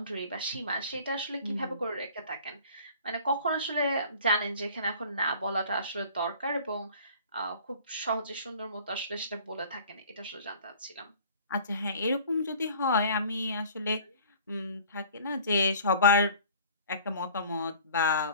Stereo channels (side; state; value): both; inverted; correlation -0.48